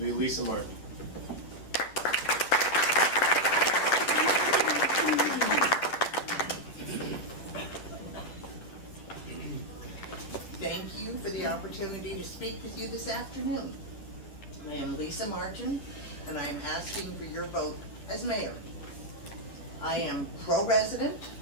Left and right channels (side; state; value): right; late; 9.8 ms